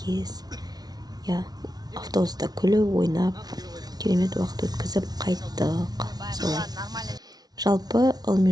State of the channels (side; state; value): left; late; 0.19 ms